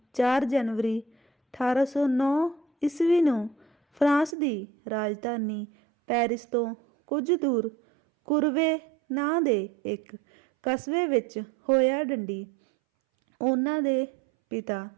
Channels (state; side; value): drops out; left; at 4.4 s